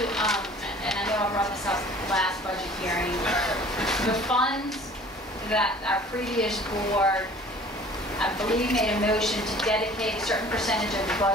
I know I brought this up last budget hearing, the funds that our previous board, I believe, made a motion to dedicate a certain percentage of the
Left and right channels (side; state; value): both; normal; correlation 0.49